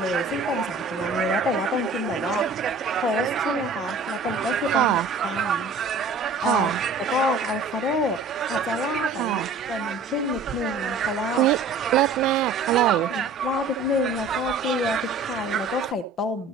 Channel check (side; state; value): left; quieter; 3.7 dB